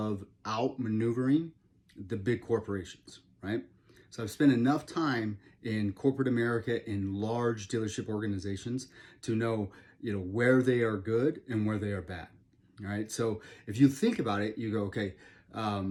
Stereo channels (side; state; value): both; identical; correlation 1.00